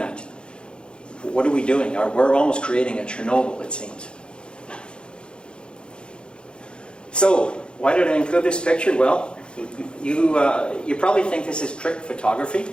what are we doing? We're almost creating a Chernobyl, it seems. So, why did I include this picture? Well, you probably think this is trick photography,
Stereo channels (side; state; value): right; late; 0.053 ms